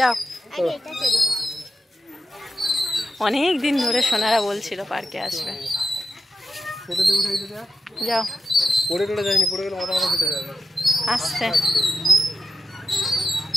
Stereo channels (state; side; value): normal; both; correlation 0.91